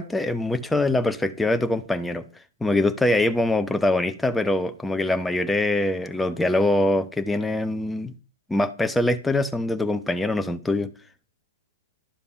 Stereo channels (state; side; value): normal; both; correlation 0.82